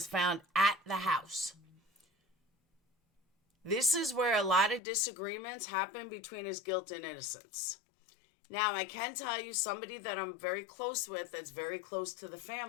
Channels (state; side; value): drops out; right; at 4.8 s